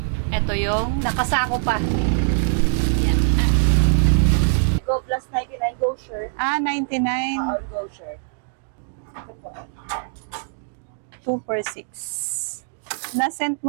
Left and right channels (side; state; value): left; silent; digital silence